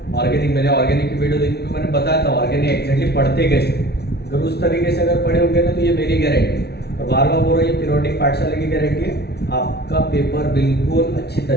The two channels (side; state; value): right; late; 0.48 ms